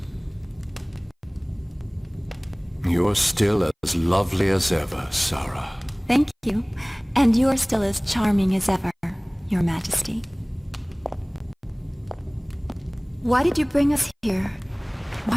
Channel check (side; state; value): both; identical; correlation 1.00